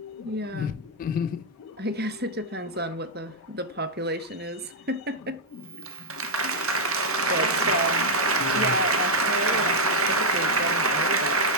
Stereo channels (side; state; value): both; normal; correlation -0.01